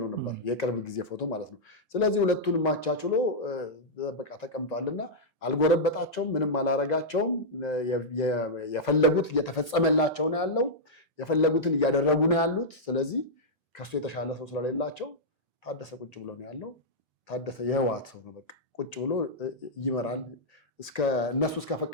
ነበር፣ የቅርብ ጊዜ ፎቶ ማለት ነው። ስለዚህ ሁለቱን ማቻችሎ በቃ ተቀምጧልና አልጎረበጣቸውም፣ ምንም አላረጋቸውም። የፈለጉት እየተፈጸመላቸው ነው ያለው፣ የፈለጉትን እያደረጉ ነው ያሉት። ስለዚህ ከሱ የተሻለ ሰው ስለሌላቸው ታደሰ ቁጭ ብሎ ነው ያለው። ታደሰ የህወሓት ሰው ነው፣ በቃ ቁጭ ብሎ ይመራል። እነሱ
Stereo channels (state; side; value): normal; both; correlation -0.08